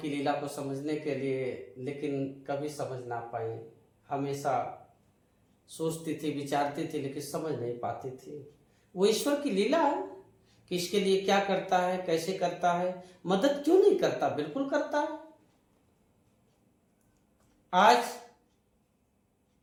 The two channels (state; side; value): identical; both; correlation 1.00